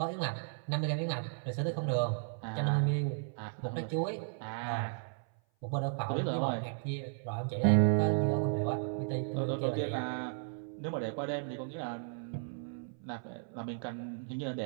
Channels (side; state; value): left; silent; 55 dB below the other